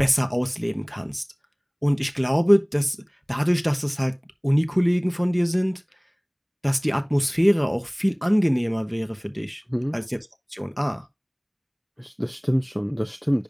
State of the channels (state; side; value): identical; both; correlation 1.00